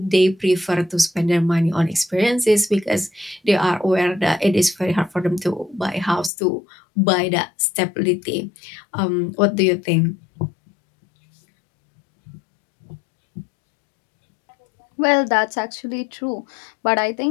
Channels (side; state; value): right; drops out; at 6.3 s